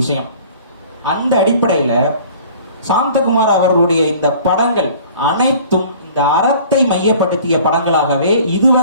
அந்த அடிப்படையில சாந்தகுமார் அவர்களுடைய இந்த படங்கள் அனைத்தும் இந்த அறத்தை மையப்படுத்திய படங்களாகவே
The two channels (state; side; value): inverted; both; correlation -0.48